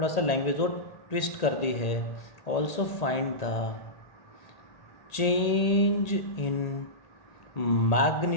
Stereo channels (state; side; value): late; right; 1.8 ms